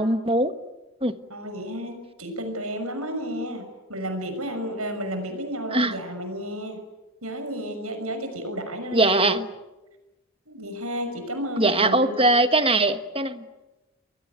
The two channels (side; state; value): both; normal; correlation 0.18